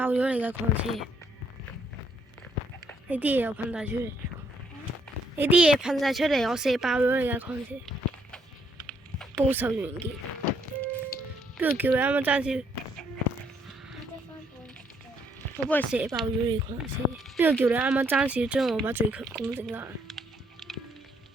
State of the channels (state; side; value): normal; both; correlation 0.70